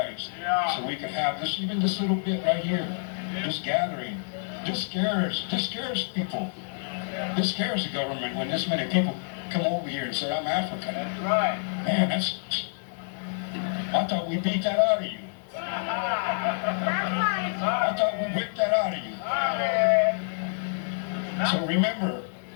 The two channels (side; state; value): right; silent; digital silence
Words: so we could have this, even this little bit right here, this gathering. This scares people. This scares the government when this many people come over here and say, I'm African. That's right. Man, I thought we beat that out of you. I thought we whipped that out of you. So remember,